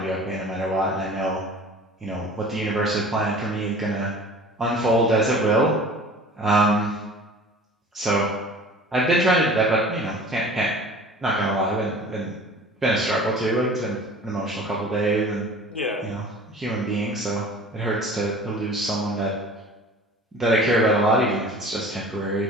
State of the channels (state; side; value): normal; both; correlation 0.43